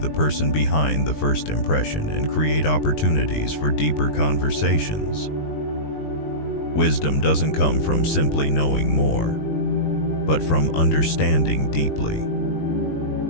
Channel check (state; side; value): late; right; 20 ms